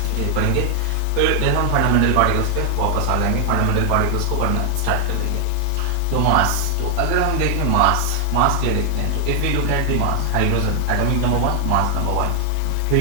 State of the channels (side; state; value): both; different; correlation 0.00